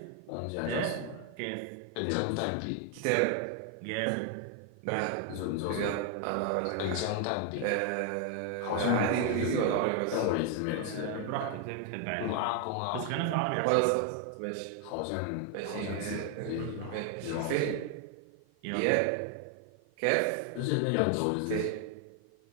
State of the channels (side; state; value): both; different; correlation 0.01